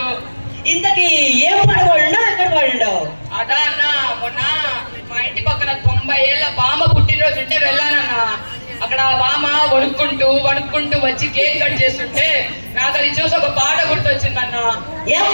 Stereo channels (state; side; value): inverted; both; correlation -1.00